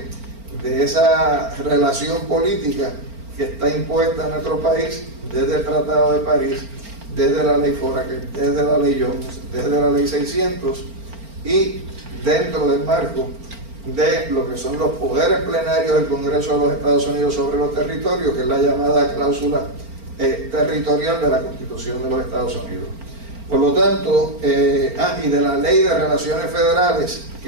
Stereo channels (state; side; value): late; left; 4.4 ms